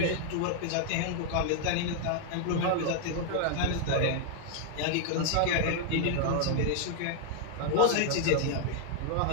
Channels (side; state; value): both; different; correlation 0.00